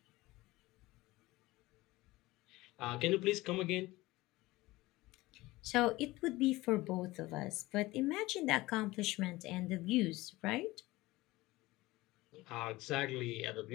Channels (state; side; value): quieter; right; 19.5 dB